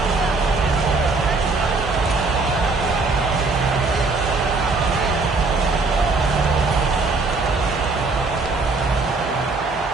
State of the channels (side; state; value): left; quieter; 3.8 dB